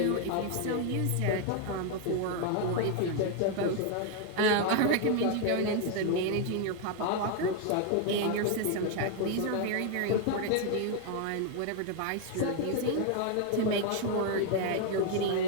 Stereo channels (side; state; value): both; different; correlation 0.00